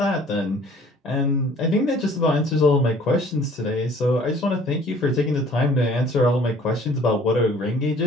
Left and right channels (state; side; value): normal; both; correlation 0.53